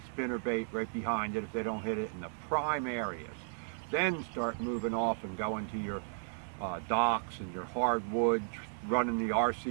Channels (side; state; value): left; silent; digital silence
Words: spinner bait right behind it if they don't hit it in the prime areas. Then start moving off and go into your docks and your hardwood, running the